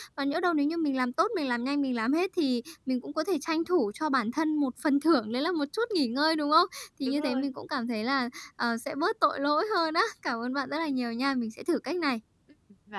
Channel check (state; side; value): identical; both; correlation 1.00